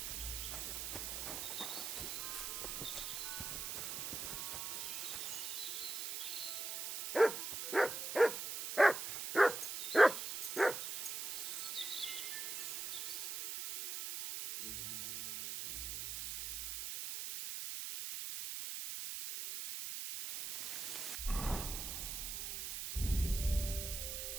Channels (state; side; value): noise; right; hiss, 4 dB below the sound